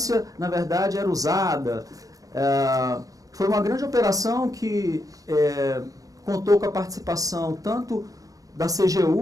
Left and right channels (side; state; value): left; late; 0.17 ms